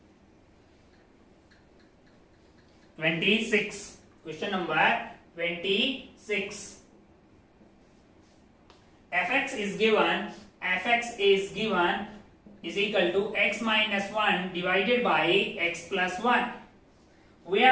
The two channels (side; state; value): both; identical; correlation 1.00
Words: Question number 26. fx is given is equal to x minus 1 divided by x plus 1. We